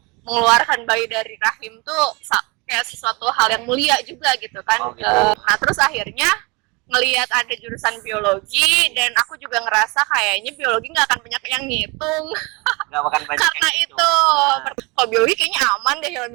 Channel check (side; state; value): left; quieter; 27.6 dB